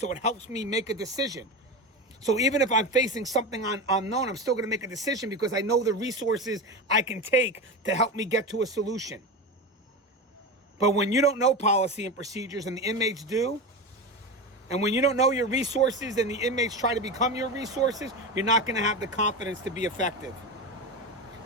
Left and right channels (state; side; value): normal; both; correlation 0.22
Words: it helps me make a decision. So even if I'm facing something unknown, I'm still going to make a decision because I know the resources I can take to help me get to a solution. But when you don't know policy and procedures and the inmates do, and when you don't know your resources and the inmates try to become your resources, you're not going to have the confidence to be effective.